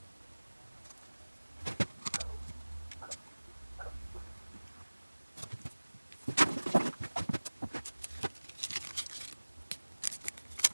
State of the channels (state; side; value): inverted; both; correlation -1.00